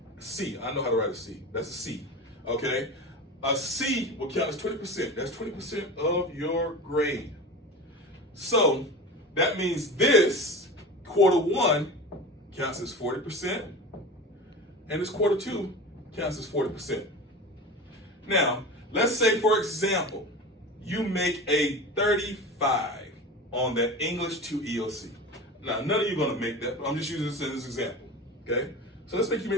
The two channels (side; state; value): both; normal; correlation 0.31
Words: C, I know how to write a C. That's a C, okay? A C will count as 20%. That's 20% of your grade. So that means this quarter 1 counts as 40%, and this quarter 2 counts as 40%. Now, let's say, for example, you make a 35 on that English 2 EOC. Now, none of you are going to make that, but I'm just using this as an example, okay? So let's say you